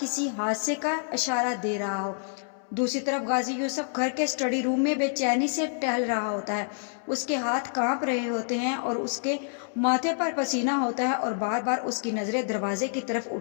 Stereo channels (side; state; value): right; silent; 60 dB below the other